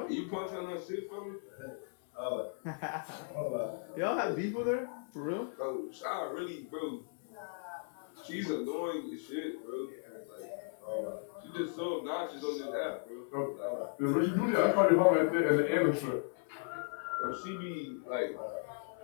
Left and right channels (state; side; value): silent; right; 54 dB below the other